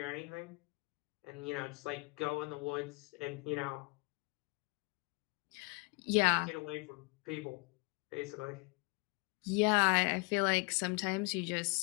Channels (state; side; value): quieter; right; 29.2 dB